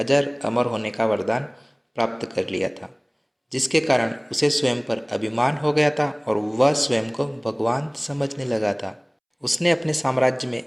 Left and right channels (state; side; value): identical; both; correlation 1.00